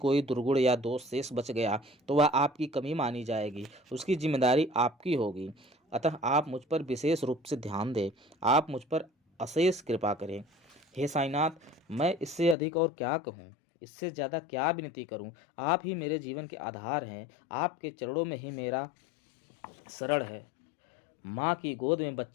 दुर्गुण या दोष शेष बच गया तो वह आपकी कमी मानी जाएगी, उसकी जिम्मेदारी आपकी होगी। अतः आप मुझ पर विशेष रूप से ध्यान दें, आप मुझ पर अशेष कृपा करें। हे साईनाथ, मैं इससे अधिक और क्या कहूँ, इससे ज़्यादा क्या विनती करूँ। आप ही मेरे जीवन के आधार हैं, आपके चरणों में ही मेरा शरण है। माँ की गोद में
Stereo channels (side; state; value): right; drops out; at 12.6 s